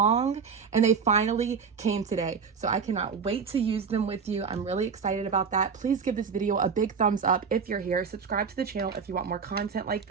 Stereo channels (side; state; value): left; quieter; 6.0 dB